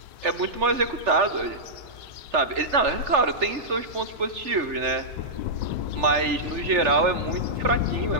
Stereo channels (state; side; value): late; left; 3.4 ms